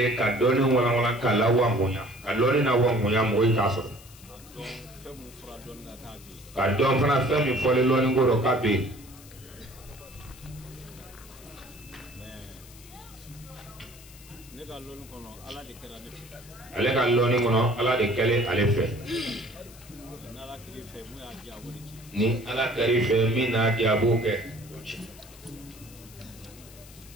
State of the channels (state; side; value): noise; left; hiss, 21 dB below the sound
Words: ka dɔɔni walawala k'a la wangoya ka dɔɔni na wangoya mɔgɔ yi k'a sɔrɔ ka dɔn fana fɛn min fɔlen lɔɔni ko rɔ k'a bɛ yen ale ka lɔɔni kɔnɔ ala de kɛlen ale fɛ ni ala kɛr'i fɛ min n'a di a b'o kɛ